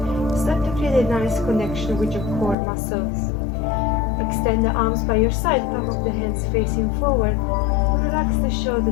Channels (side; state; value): right; drops out; at 2.6 s